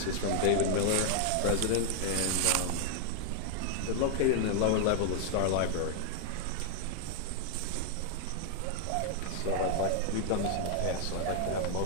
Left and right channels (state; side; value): different; both; correlation 0.00